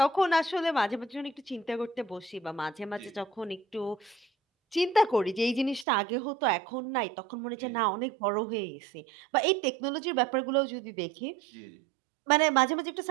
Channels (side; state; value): left; drops out; at 5.9 s